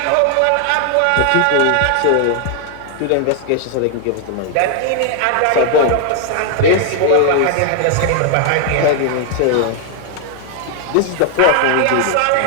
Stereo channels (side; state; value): both; different; correlation 0.00